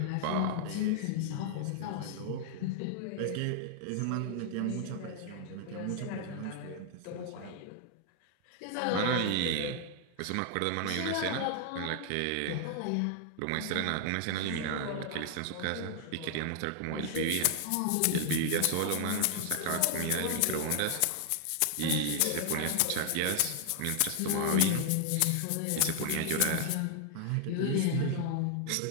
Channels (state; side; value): different; both; correlation 0.00